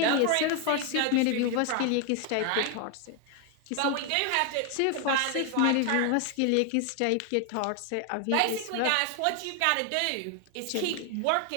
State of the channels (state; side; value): different; both; correlation 0.01